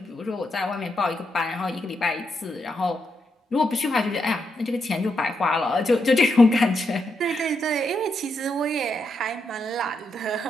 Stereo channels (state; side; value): normal; both; correlation 0.82